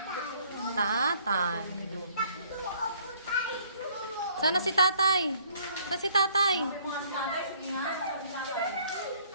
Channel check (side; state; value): both; inverted; correlation -0.61